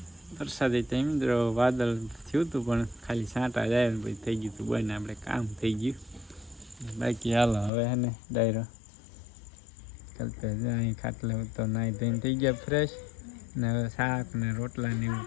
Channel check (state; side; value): drops out; right; at 7.7 s